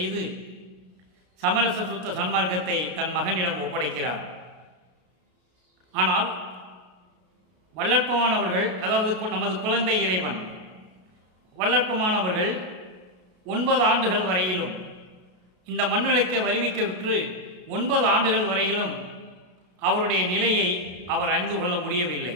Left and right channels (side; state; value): left; late; 33 ms